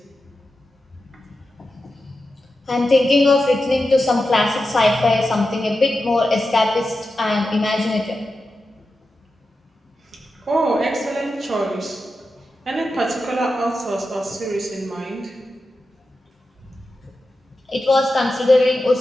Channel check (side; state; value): both; normal; correlation 0.91